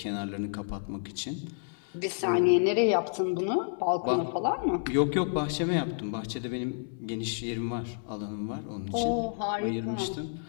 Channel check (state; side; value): silent; right; digital silence